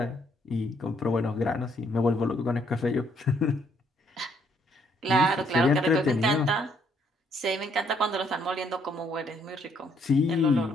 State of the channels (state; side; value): normal; both; correlation 0.69